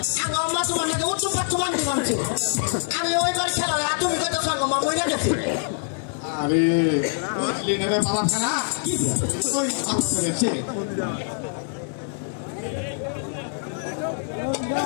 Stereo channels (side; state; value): right; silent; 59 dB below the other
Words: আঙ্গো মা তোমার নাকি উচ্চ পাচ্ছমান দিবামছে আমি ওইবার খেলা তুমি কত সঙ্গ মা মরে গেছি আরে বুঝলি না রে বাবা খানা কি ওই আচ্ছা করেছে